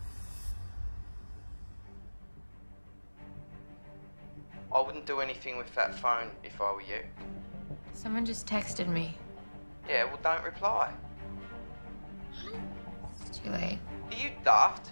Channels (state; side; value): inverted; both; correlation -1.00